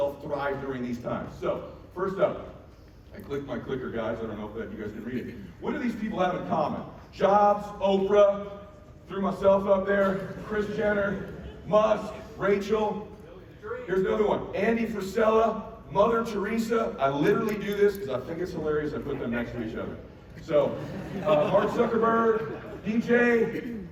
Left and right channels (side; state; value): both; identical; correlation 1.00